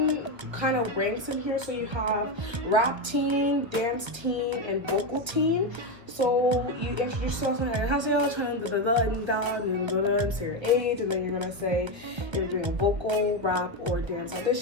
kind of ranks in here. So you have rap teen, dance teen, and vocal teen. So you introduce yourself and say your age, and then you're gonna say you're doing a vocal, rap, or dance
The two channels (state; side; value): late; left; 1.4 ms